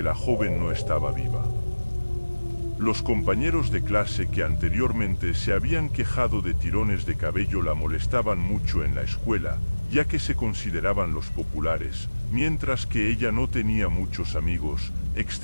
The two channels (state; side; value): inverted; both; correlation -1.00